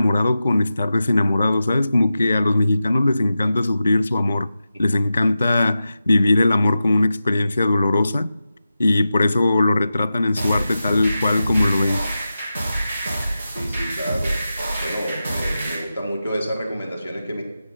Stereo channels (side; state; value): both; inverted; correlation -0.92